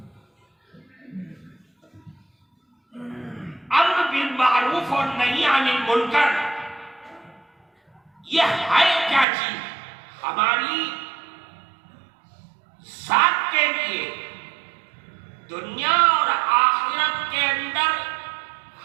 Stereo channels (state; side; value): drops out; left; at 9.2 s